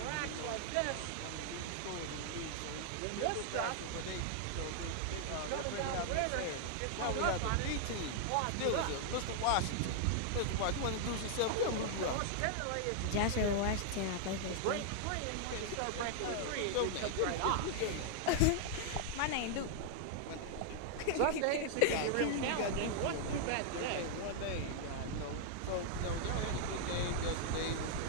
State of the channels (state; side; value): different; both; correlation -0.01